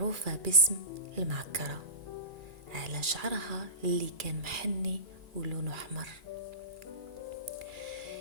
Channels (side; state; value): left; late; 2.3 ms